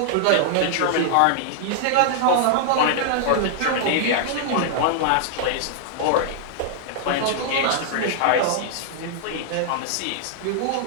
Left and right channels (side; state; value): both; different; correlation -0.01